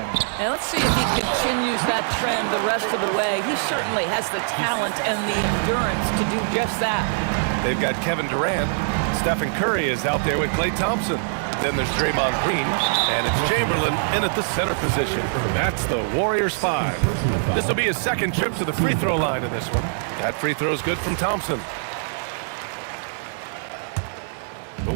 And let's see if he continues that trend the rest of the way. He certainly has the talent and the endurance to do just that. They've got Kevin Durant. Stephen Curry is out there with Klay Thompson. Then there's Draymond Green, and it's Chamberlain in at the center position. That's the Warriors 5. This will be his second trip to the free throw line in this one. That free throw is good from Thompson. The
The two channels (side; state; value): left; silent; 57 dB below the other